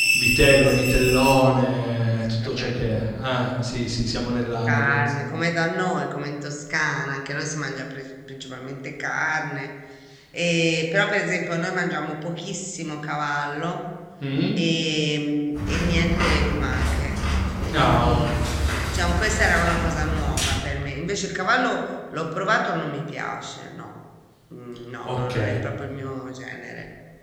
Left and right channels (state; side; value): identical; both; correlation 1.00